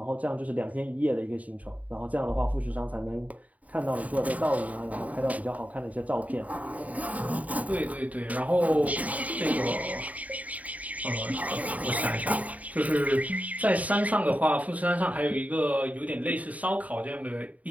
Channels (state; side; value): late; left; 0.070 ms